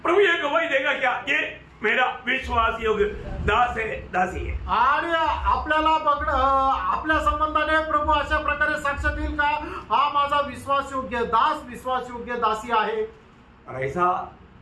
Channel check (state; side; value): identical; both; correlation 1.00